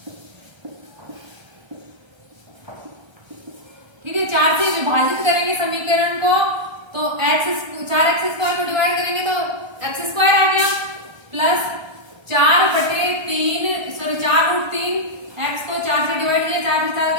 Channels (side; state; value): left; late; 1.3 ms